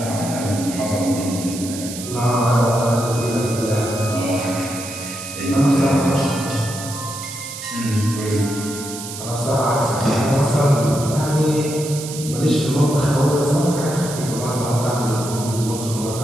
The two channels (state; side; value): noise; right; hiss, 10 dB below the sound